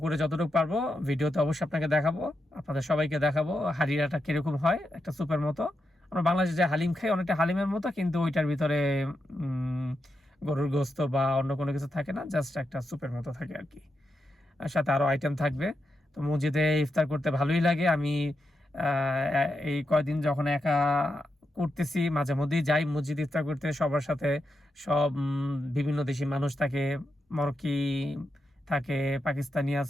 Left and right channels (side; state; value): both; normal; correlation 0.86